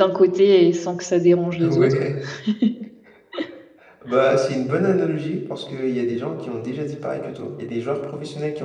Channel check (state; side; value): identical; both; correlation 1.00